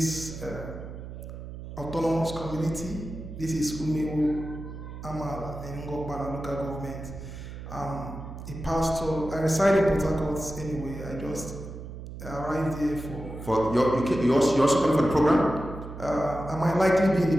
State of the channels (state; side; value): noise; right; hum, 11 dB below the sound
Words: autonomous community. This is Umewo Amala in Ngor Okpala local government. I'm a pastor. I reside in Port Harcourt anyway. I just arrived here for you also coming for the program? I might likely be in